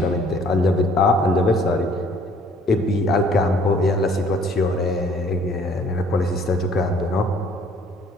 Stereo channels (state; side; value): normal; both; correlation 0.58